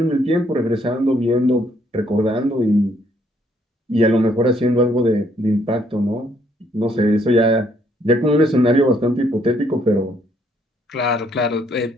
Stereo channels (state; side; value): normal; both; correlation 0.68